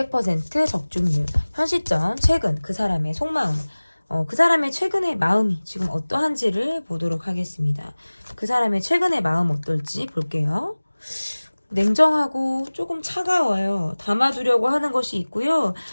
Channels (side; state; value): both; inverted; correlation -1.00